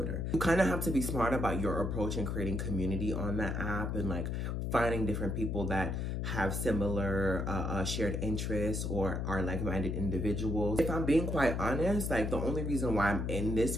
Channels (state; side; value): noise; left; hum, 1 dB below the sound